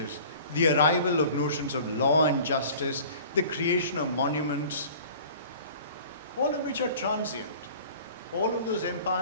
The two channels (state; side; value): inverted; both; correlation -0.45